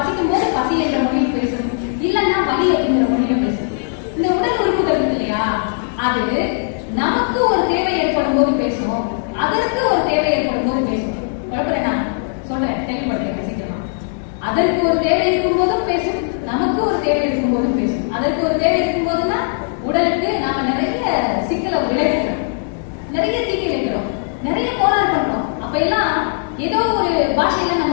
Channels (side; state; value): right; silent; 67 dB below the other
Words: போது பசி என்ற மொழியில் பேசும், இல்லைன்னா வலி அப்படிங்கிற மொழியில பேசும். இந்த உடல் உறுப்புகள் இருக்கு இல்லையா, அது நமக்கு ஒரு தேவை ஏற்படும் போது பேசும், அதற்கு ஒரு தேவை ஏற்படும் போது பேசும். குழப்பறேன் நான் சொல்றேன், தெளிவுபடுறேன் சீக்கிரமா. அதற்கு ஒரு தேவை இருக்கும் போதும் பேசும், நமக்கு ஒரு தேவை இருக்கும் போதும் பேசும். அதற்கு ஒரு தேவை இருக்கும் போதுன்னா உடலுக்கு நாம நிறைய சிக்கலை விளைவிக்கிறோம், நிறைய தீங்கி வைக்கிறோம், நிறைய கோளாறு பண்றோம். அப்ப எல்லாம் ஏதோ ஒரு பாஷையில